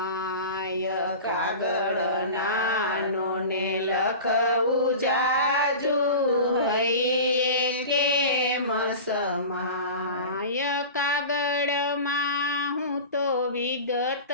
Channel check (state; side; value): inverted; both; correlation -0.33